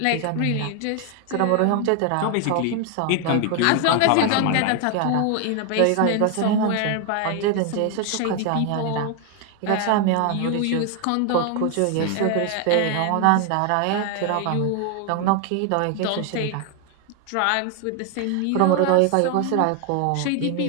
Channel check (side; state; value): both; different; correlation 0.00